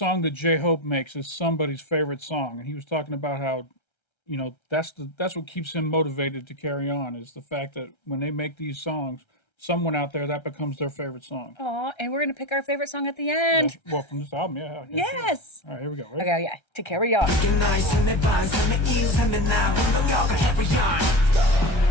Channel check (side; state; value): right; late; 1.3 ms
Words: that J-Hope makes is somebody's favorite song. And he was talking about how, you know, that's what keeps him motivated to carry on, is the fact that when they make these songs, someone out there, that becomes their favorite song. Aw, and we're gonna pick our favorite song at the end. Well, from this album, yeah. Yes. All right, here we go. Ready? Okay, yeah. To carry on. 그게 나의 삶의 반, 삶의 이유, 삶의 나 운동력을 carry on.